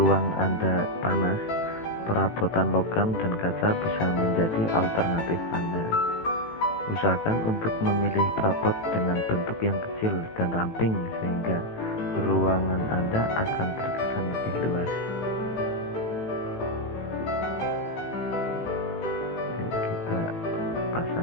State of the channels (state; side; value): late; right; 18 ms